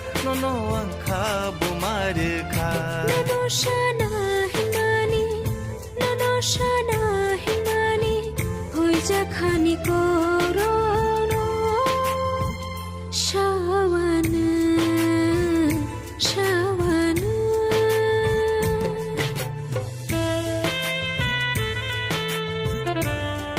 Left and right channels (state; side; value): identical; both; correlation 1.00